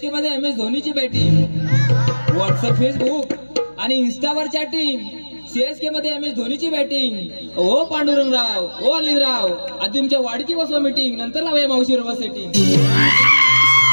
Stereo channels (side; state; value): both; inverted; correlation -1.00